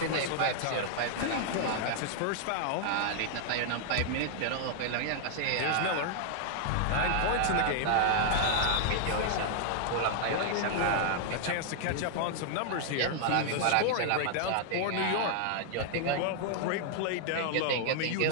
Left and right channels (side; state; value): both; different; correlation 0.00